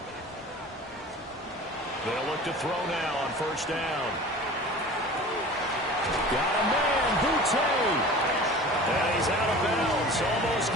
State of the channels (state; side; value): normal; both; correlation 0.39